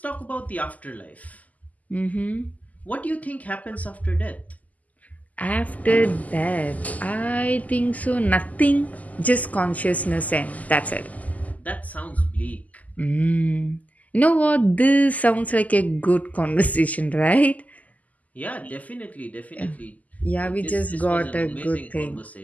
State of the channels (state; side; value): late; right; 0.076 ms